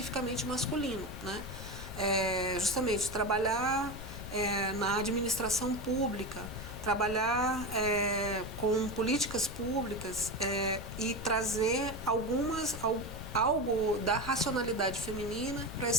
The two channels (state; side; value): noise; left; rumble, 10 dB below the sound